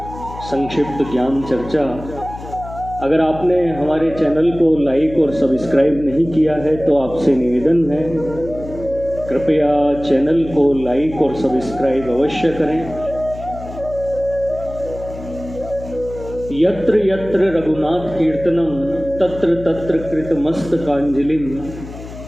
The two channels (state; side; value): noise; left; hum, 13 dB below the sound